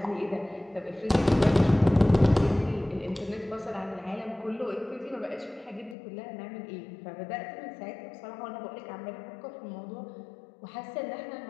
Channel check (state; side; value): drops out; right; at 6.0 s